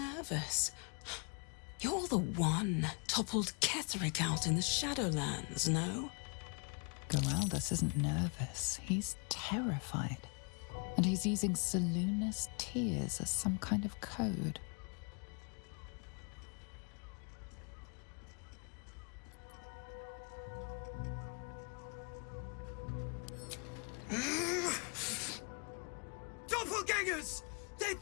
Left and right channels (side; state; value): right; quieter; 36.9 dB